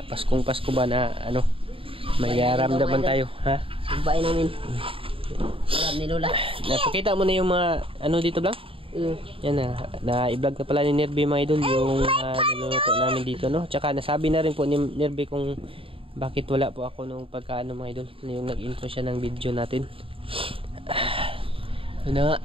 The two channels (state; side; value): late; left; 0.26 ms